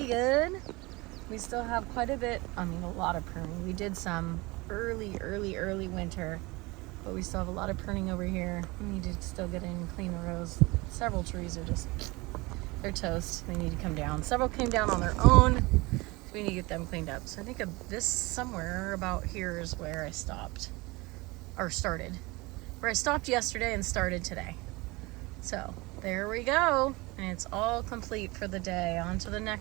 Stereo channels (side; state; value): left; quieter; 23.6 dB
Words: good. We still have quite a bit, a lot of pruning. We did some early winter, but we still have a lot of pruning over here. We need to still get in and clean the rows. Several trees are just, they're toast. They need to come down. Several came down on their own, so we need to get them cleaned up. So I think this somewhere about here is where I stopped, or started. Where I stopped yesterday and started today. So there we go. And it's all complete for the day. On to the